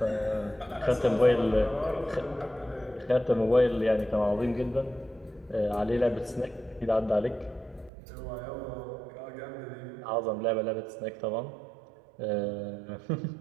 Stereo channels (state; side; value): drops out; left; at 7.9 s